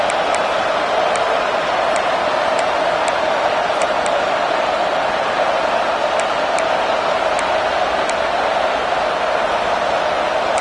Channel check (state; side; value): identical; both; correlation 1.00